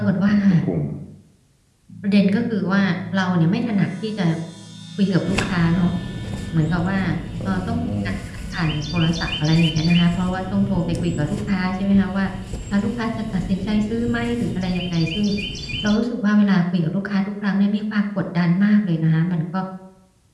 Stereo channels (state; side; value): identical; both; correlation 1.00